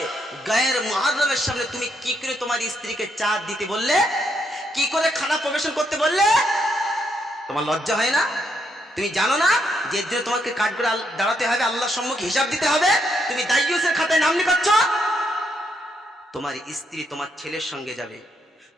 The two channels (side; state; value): both; normal; correlation 0.77